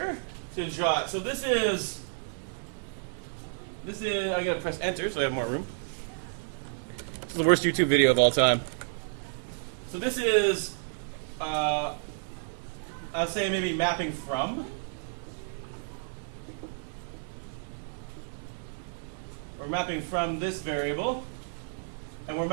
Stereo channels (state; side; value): silent; left; 57 dB below the other